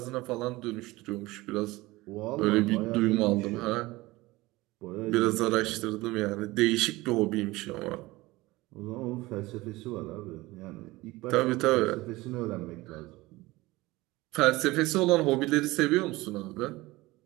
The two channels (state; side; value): quieter; left; 20.2 dB